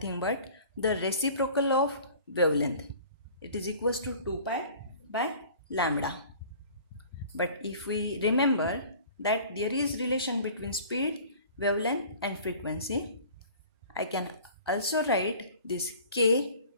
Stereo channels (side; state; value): both; inverted; correlation -0.46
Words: but the reciprocal of wavelength. It is equals to 2 pi by lambda. But if we remember that there is relation between speed, wavelength and frequency, I can also write this k